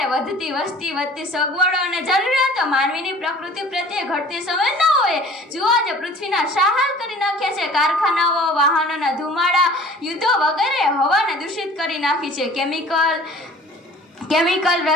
વધતી વસ્તી, વધતી સગવડો અને જરૂરિયાતો, માનવીની પ્રકૃતિ પ્રત્યે ઘટતી સંવેદનાઓએ જુઓ આજે પૃથ્વીના શાહાલ કરી નાખ્યા છે. કારખાનાઓ, વાહનોના ધુમાડા, યુદ્ધો વગેરે હવાને દૂષિત કરી નાખી છે. કેમિકલ,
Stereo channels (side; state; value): both; normal; correlation 0.47